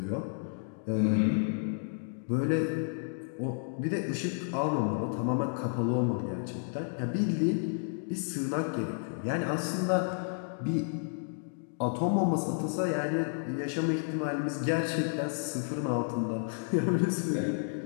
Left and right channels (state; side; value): silent; right; digital silence